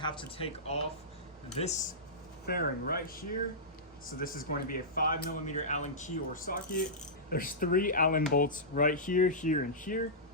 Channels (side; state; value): both; normal; correlation -0.15